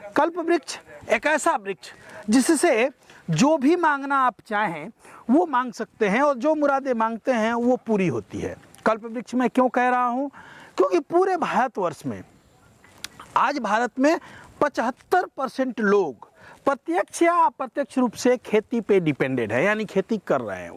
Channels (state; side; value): identical; both; correlation 1.00